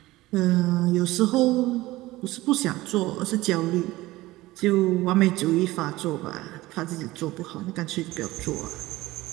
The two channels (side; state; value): left; quieter; 18.4 dB